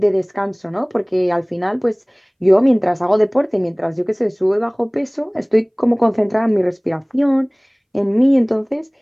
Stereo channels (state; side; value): identical; both; correlation 1.00